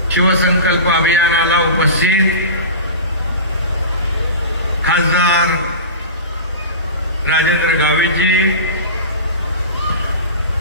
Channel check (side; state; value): both; inverted; correlation -0.31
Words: शिवसंकल्प अभियानाला उपस्थित खासदार राजेंद्र गावितजी,